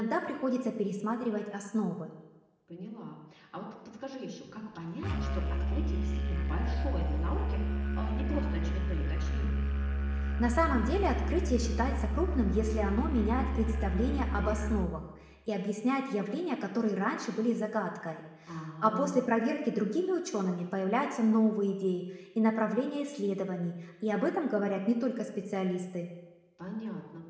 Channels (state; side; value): identical; both; correlation 1.00